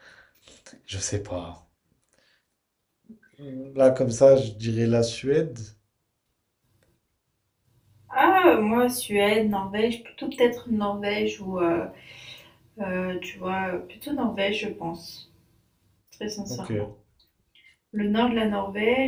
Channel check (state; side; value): identical; both; correlation 1.00